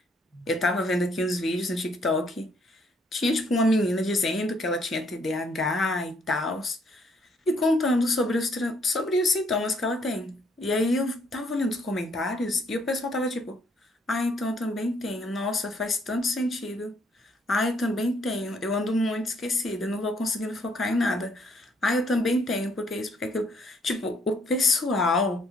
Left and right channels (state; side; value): normal; both; correlation 0.68